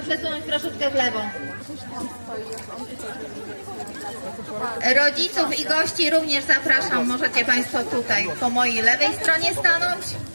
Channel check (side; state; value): both; inverted; correlation -1.00